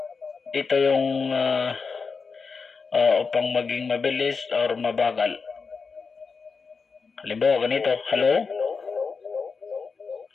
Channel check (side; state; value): right; quieter; 5.0 dB